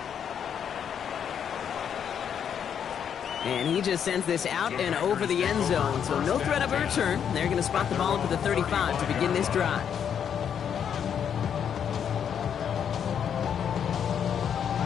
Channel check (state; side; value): quieter; right; 8.2 dB